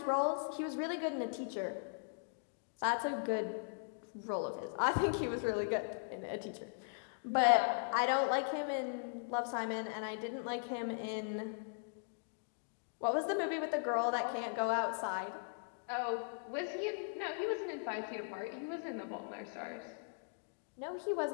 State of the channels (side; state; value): right; silent; digital silence